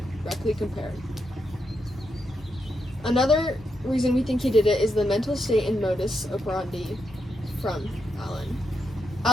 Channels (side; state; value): both; normal; correlation 0.83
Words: compare. Another reason we think he did it is the mental state and modus operandi from Allen.